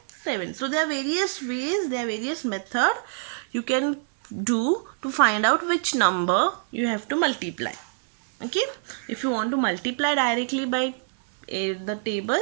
7. So there are various ways, there are various methods you can do to find out which number you have to multiply. Okay. If you want to multiply directly by the table,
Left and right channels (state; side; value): silent; left; 61 dB below the other